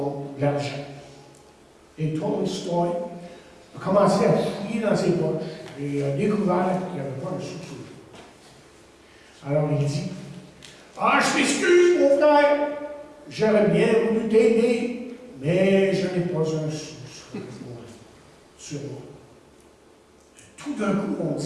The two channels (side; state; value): both; identical; correlation 1.00